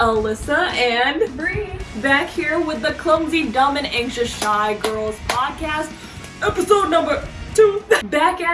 and Bree back here with the Clumsy, Dumb, and Anxious Shy Girls podcast, episode number 2. Back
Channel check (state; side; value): identical; both; correlation 1.00